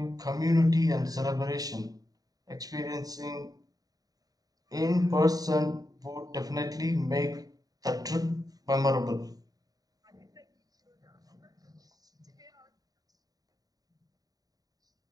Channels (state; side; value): late; left; 0.18 ms